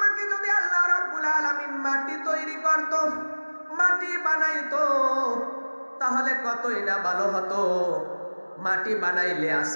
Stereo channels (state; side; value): inverted; both; correlation -1.00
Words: যদি আল্লাহ রাব্বুল আলামিন মাটি তৈরি করত, মাটি বানাইতো, তাহলে কতই না ভালো হতো। মাটি বানাইলে